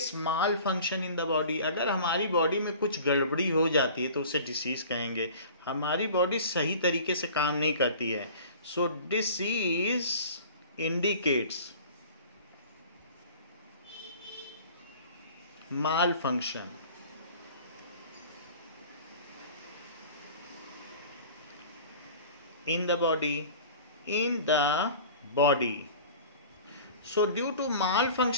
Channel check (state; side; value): inverted; both; correlation -0.42